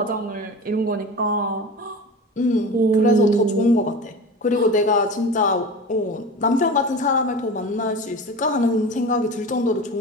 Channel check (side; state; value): both; normal; correlation 0.32